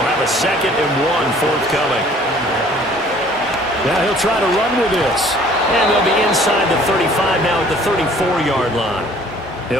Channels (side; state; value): both; normal; correlation 0.54